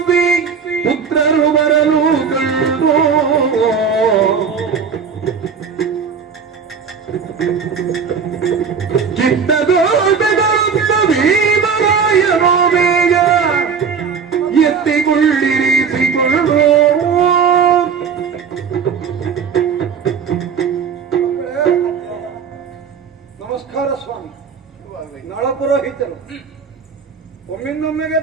ಪುತ್ರರು ಬರಲು ಕಂಡು ಕಿತ್ತದೋಟಗಳುತ್ತ ಭೀಮರಾಯನೋ ಬೇಗ ಎತ್ತಿಕೊಳ್ಳಿರಿಸಿಕೊಂಡು ನಮಸ್ಕಾರ ಸ್ವಾಮಿ. ನಳಪುರೋಹಿತರು ಒಮ್ಮಿಂದೊಮ್ಮೆಗೆ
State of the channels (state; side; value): quieter; left; 6.3 dB